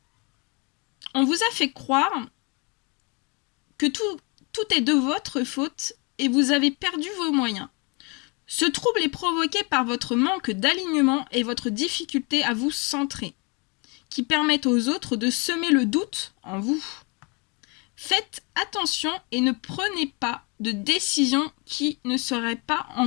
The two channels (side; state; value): right; quieter; 31.6 dB